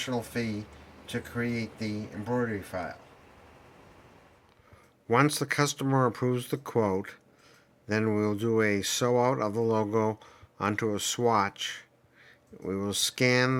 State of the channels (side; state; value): both; identical; correlation 1.00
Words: fee to create the embroidery file. Once the customer approves the quote, then we'll do a sew out of the logo onto a swatch. We will scan